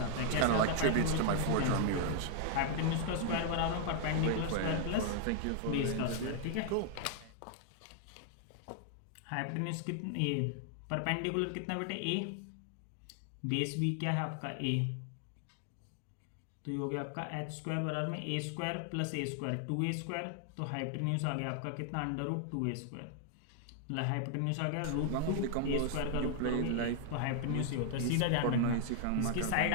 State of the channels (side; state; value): both; different; correlation 0.00